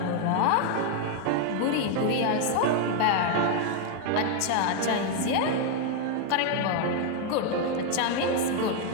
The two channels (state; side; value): different; both; correlation 0.01